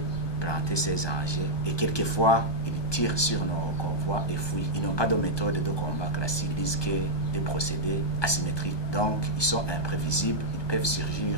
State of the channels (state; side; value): late; right; 1.2 ms